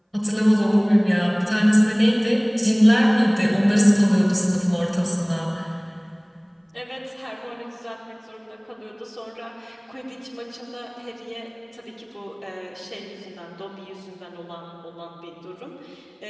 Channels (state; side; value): identical; both; correlation 1.00